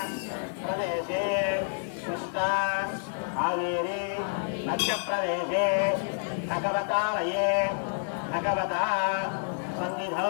ప్రదేశే కృష్ణా కావేరీ మధ్యప్రదేశే భగవతాలయే భగవతా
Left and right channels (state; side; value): silent; right; 59 dB below the other